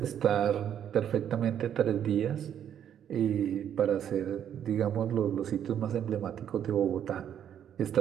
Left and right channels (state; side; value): quieter; left; 9.5 dB